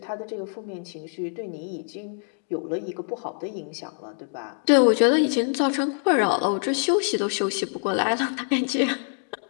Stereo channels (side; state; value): right; silent; 60 dB below the other